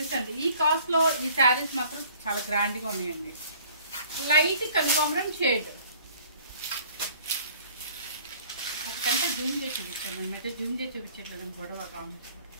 అండి. ఈ కాస్ట్ లో ఈ శారీస్ మాత్రం చాలా గ్రాండ్ గా ఉన్నాయండి. లైట్ కనకాంబరం షేడ్. ఒకటంటే జూమ్ చేసి చూపించాను అనమాట. జూమ్ చేసి చూపించట్లేదు గొడవ కాము.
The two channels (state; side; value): inverted; both; correlation -0.53